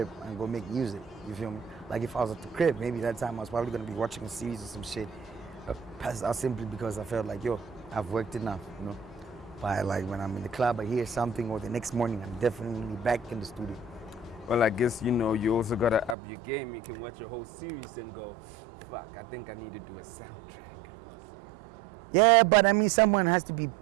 and go make music. You feel me? Like if I was at the crib, maybe that time I was probably gonna be watching a series or some shit. Passed out simply because I felt like, yo, I've worked enough, you know. But like when I'm in the club, I hear something, or the next morning, I'm definitely back in the studio. Well, I guess, you know, you also gotta up your game. You can watch a whole series and go, fuck, I think I need to do a soundtrack. Yeah, but I mean, someone has to be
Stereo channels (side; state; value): left; drops out; at 16.2 s